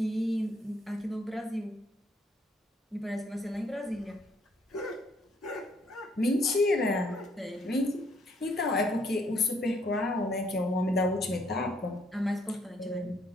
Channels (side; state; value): both; normal; correlation 0.68